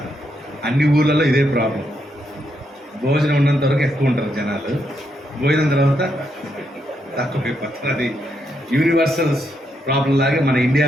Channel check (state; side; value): normal; both; correlation 0.79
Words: అన్ని ఊర్లలో ఇదే ప్రాబ్లం. భోజనం ఉన్నంత వరకు ఎక్కువ ఉంటారు జనాలు, భోజనం తర్వాత తక్కువ అయిపోతారు. అది యూనివర్సల్ ప్రాబ్లం లాగే మన